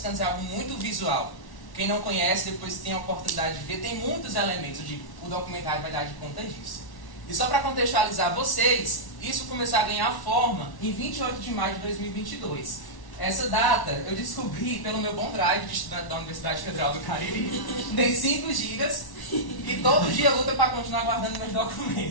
é algo muito visual. Quem não conhece, depois tem a oportunidade de ver, tem muitos elementos, o documentário vai dar de conta disso. E só para contextualizar vocês, isso começou a ganhar forma em 28 de maio de 2022. Essa data eu descobri pelo meu bom drive de estudante da Universidade Federal do Cariri. Tem 5 gigas e todo dia luta para continuar guardando meus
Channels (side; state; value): right; late; 1.1 ms